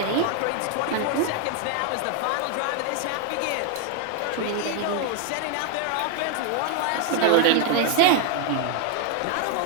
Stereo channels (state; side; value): different; both; correlation 0.00